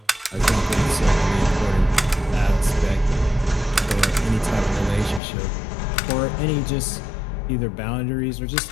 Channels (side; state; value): right; drops out; at 5.2 s